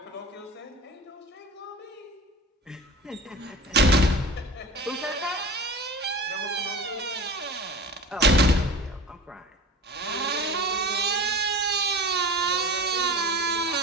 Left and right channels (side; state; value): both; normal; correlation 0.37